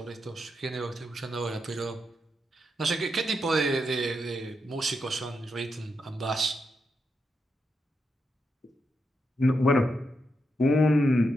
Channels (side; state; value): both; normal; correlation 0.84